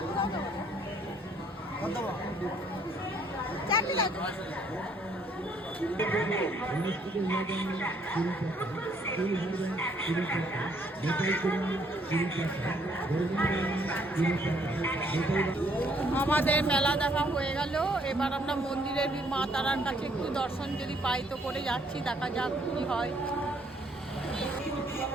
আমাদের মেলা দেখা হয়ে গেল, এবার আমরা মন্দিরের মা তারার কাছে একটু দর্শন যদি পাই তো করে যাচ্ছি, দেখা যাক কি হয়।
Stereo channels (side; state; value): both; normal; correlation 0.66